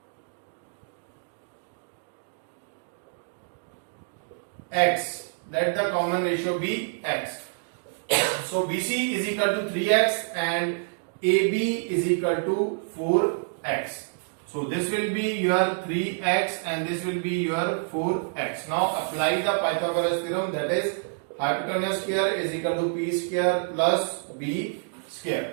x. Let the common ratio be x. So BC is equal to 3x and AB is equal to 4x. So this will be your 3x and this will be your 4x. Now apply the Pythagoras theorem, that is hypotenuse square is equal to p square plus b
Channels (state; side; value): silent; left; digital silence